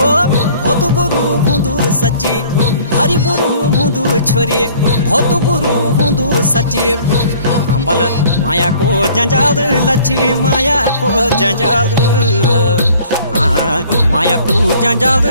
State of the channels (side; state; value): both; inverted; correlation -0.53